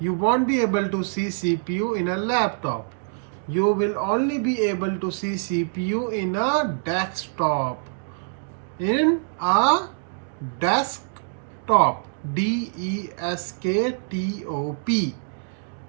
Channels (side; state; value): left; silent; digital silence